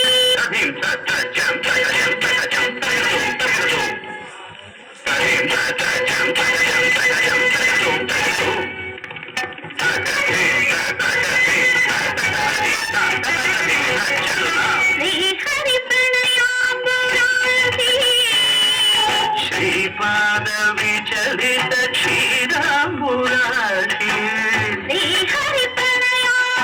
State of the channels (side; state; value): both; identical; correlation 1.00